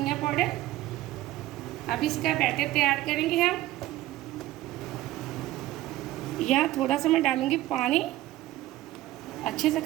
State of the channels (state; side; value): quieter; left; 16.0 dB